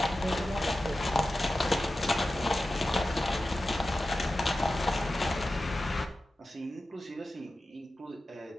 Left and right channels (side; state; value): both; normal; correlation 0.93